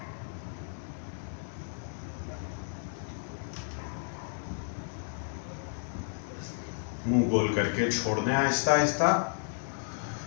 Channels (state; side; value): silent; right; digital silence